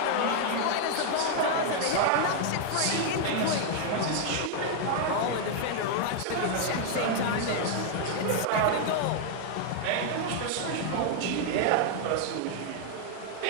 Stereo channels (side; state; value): both; different; correlation 0.00